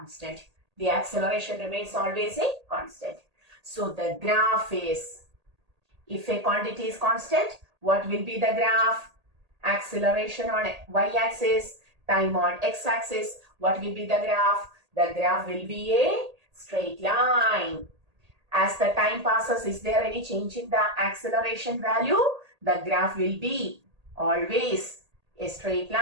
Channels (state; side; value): late; left; 1.8 ms